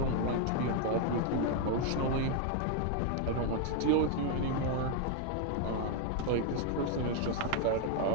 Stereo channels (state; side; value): different; both; correlation 0.00